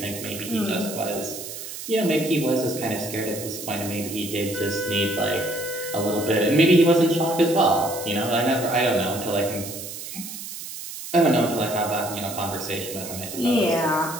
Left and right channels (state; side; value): noise; right; hiss, 10 dB below the sound